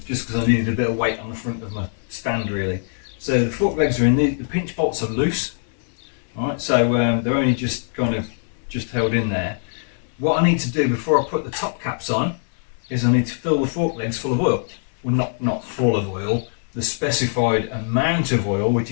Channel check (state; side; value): silent; right; digital silence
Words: just because I needed a bit of weight on the front of my stand really. So the fork legs are in, the pinch bolts are loose. Alright, so they're only just kind of held in there. What I need to do before I put the top caps on is I need to fill the fork legs full of oil. Well, not full of oil, the specified amount of oil, which